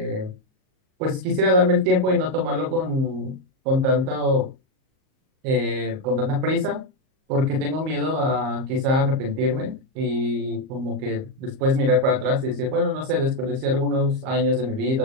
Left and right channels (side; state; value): left; late; 38 ms